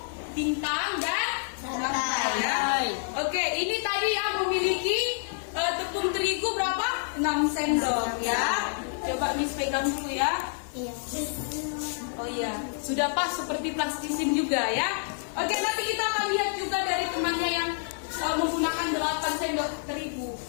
bintang, dan rantai ya. Oke, ini tadi yang memiliki tepung terigu berapa? 6 sendok ya. Coba Miss pegang dulu ya. Iya. Oh iya, sudah pas seperti plastisin juga ya. Oke, nanti kita akan lihat juga dari temannya yang menggunakan 8 sendok terigu.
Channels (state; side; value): silent; right; 59 dB below the other